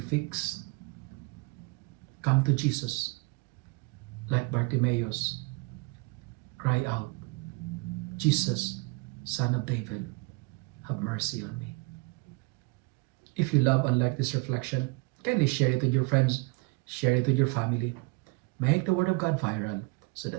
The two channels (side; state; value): left; quieter; 27.4 dB